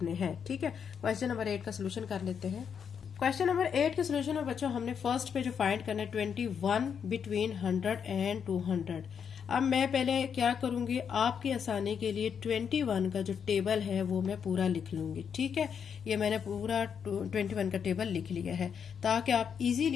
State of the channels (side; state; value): right; quieter; 7.2 dB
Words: हैं। ठीक है, क्वेश्चन नंबर 8 का सोल्यूशन कर लेते हैं। क्वेश्चन नंबर 8 के सोल्यूशन में बच्चों हमने फर्स्ट पे जो फाइंड करना है 21 बिटवीन 100 एंड 200। अब मैं पहले क्या करूंगी, आपकी आसानी के लिए 21 का जो टेबल है वो मैं पूरा लिख लूंगी। ठीक है, ये मैंने पूरा 21 का टेबल लिख लिया है ताकि आप